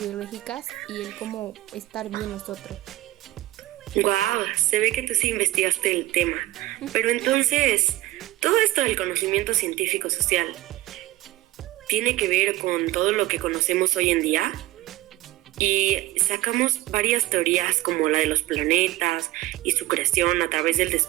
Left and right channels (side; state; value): left; quieter; 16.8 dB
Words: y el cómo estar bien nosotros. Guau, se ve que tú sí investigaste el tema. Pero entonces, todo esto del conocimiento científico social tiene que ver con todo lo que conocemos hoy en día. Y sacamos varias teorías como la de los planetas y su creación a través del